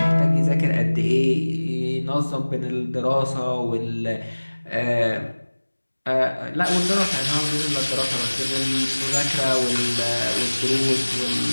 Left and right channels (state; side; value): inverted; both; correlation -1.00